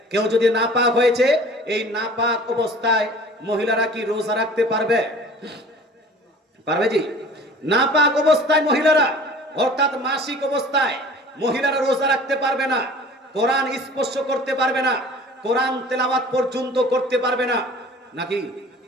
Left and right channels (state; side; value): normal; both; correlation 0.45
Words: কেউ যদি নাপাক হয়েছে, এই নাপাক অবস্থায় মহিলারা কি রোজা রাখতে পারবে? পারবে জি? নাপাক অবস্থায় মহিলারা, অর্থাৎ মাসিক অবস্থায় মহিলারা রোজা রাখতে পারবে না, কোরআন স্পর্শ করতে পারবে না, কোরআন তেলাওয়াত পর্যন্ত করতে পারবে না। নাকি